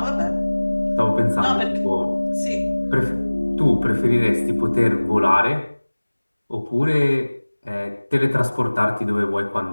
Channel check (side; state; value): both; inverted; correlation -1.00